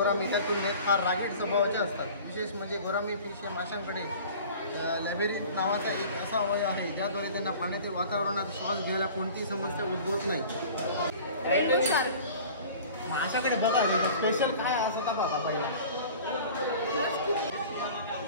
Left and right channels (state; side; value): inverted; both; correlation -0.43